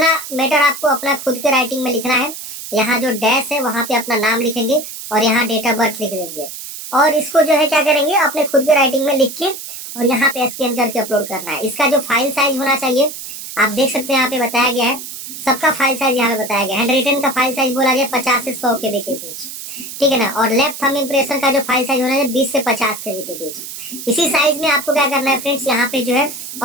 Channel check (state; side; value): noise; right; hiss, 10 dB below the sound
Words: मैटर आपको अपना खुद के राइटिंग में लिखना है। यहाँ जो डैश है वहां पे अपना नाम लिखेंगे, और यहाँ डेट ऑफ बर्थ लिख देंगे, और इसको जो है क्या करेंगे अपने खुद के राइटिंग में लिख के और यहाँ पे स्कैन करके अपलोड करना है। इसका जो फाइल साइज होना चाहिए आप देख सकते हैं, यहाँ पे बताया गया है सबका फाइल साइज यहाँ पे बताया गया। हैंड रिटन का फाइल साइज बोला गया 50 से 100 KB के बीच, ठीक है ना। और लेफ्ट थंब इम्प्रेशन का जो फाइल साइज होना है 20 से 50 KB के बीच। इसी साइज में आपको क्या करना है फ्रेंड्स, यहाँ पे जो है